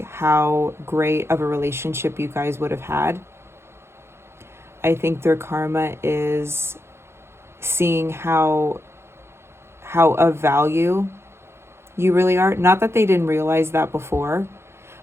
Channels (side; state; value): left; late; 0.12 ms